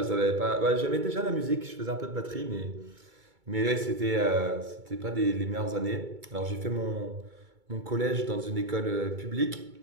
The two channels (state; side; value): late; left; 2.2 ms